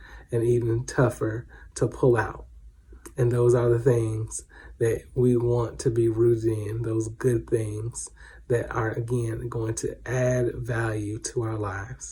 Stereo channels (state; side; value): identical; both; correlation 1.00